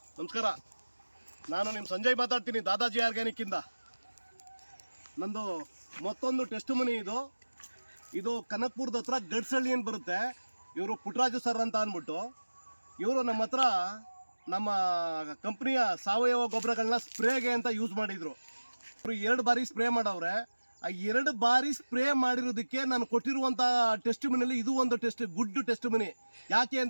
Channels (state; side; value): inverted; both; correlation -1.00